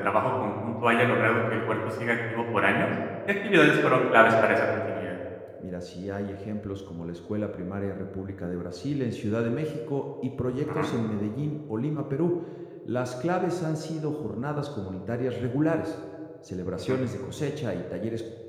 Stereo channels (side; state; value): both; identical; correlation 1.00